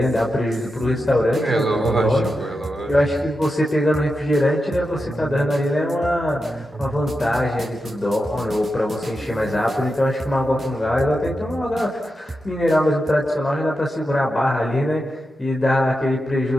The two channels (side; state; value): both; normal; correlation 0.89